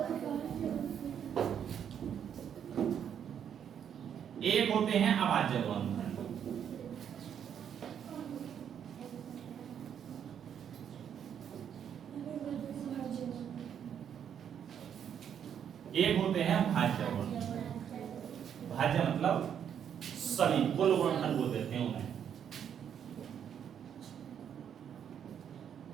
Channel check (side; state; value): left; quieter; 8.6 dB